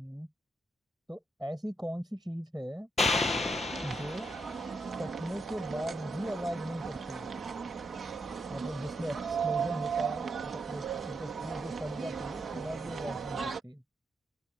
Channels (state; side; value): normal; both; correlation 0.81